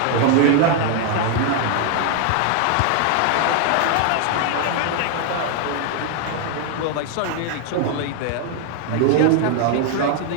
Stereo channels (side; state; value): both; different; correlation 0.00